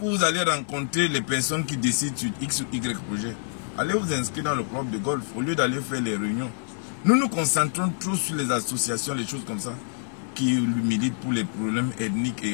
où vous allez rencontrer les personnes qui décident sur X ou Y projet. Allez vous inscrire dans le club de golf au lieu d'aller faire les réunions. Nous nous concentrons trop sur les associations, les choses comme ça, qui militent pour les problèmes ethniques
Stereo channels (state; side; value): silent; right; 61 dB below the other